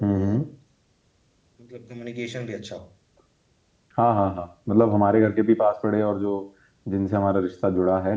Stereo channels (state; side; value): identical; both; correlation 1.00